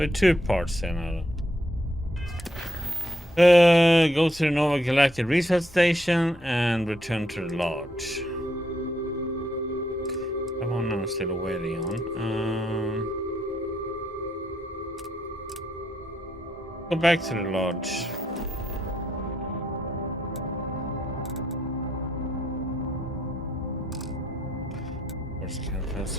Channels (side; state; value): both; normal; correlation 0.76